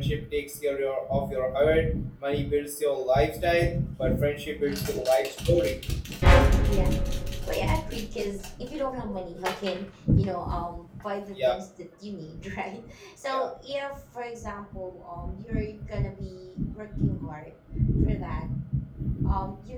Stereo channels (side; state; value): both; identical; correlation 1.00